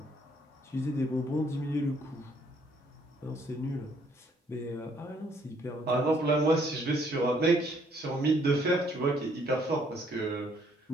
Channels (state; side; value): normal; both; correlation 0.66